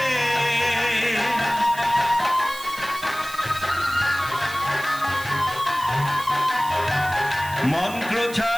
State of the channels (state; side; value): noise; right; hiss, 15 dB below the sound